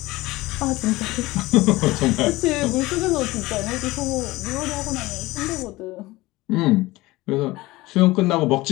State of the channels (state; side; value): quieter; right; 19.7 dB